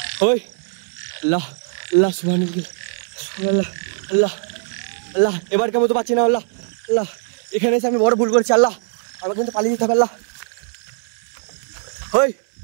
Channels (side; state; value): left; silent; 65 dB below the other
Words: ওই আল্লাহ আল্লাহ সুবহানাল্লাহ আল্লাহ আল্লাহ, এবার কেমন তো পাচ্ছি না। আল্লাহ আল্লাহ, এখানে এসে আমি বড় ভুল করেছি। আল্লাহ আমাকে কিন্তু পালিয়ে যেতে হবে। আল্লাহ ওই